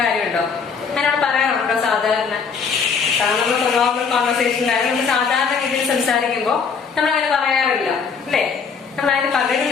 കാര്യമുണ്ടോ? അങ്ങനെ പറയാറുണ്ടോ? സാധാരണ നമ്മൾ നോർമൽ കോൺവെർസേഷനിലായാലും നമ്മൾ സാധാരണ രീതിയിൽ സംസാരിക്കുമ്പോൾ നമ്മൾ അങ്ങനെ പറയാറില്ല അല്ലേ. നമ്മൾ അതിന് പകരം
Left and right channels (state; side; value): quieter; right; 5.9 dB